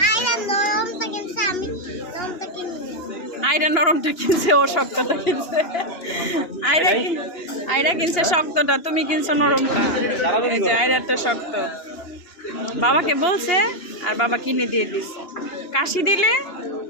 আইরা নরমটা কিনছে, ও শক্তটা কিনছে। আইরা কিনছে শক্তটা, তুমি কিনছো নরমটা। এই যে আইরাটা শক্ত, বাবাকে বলছে আর বাবা কিনে দিয়ে দিছে। কাশি দিলে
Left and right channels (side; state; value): right; late; 2.8 ms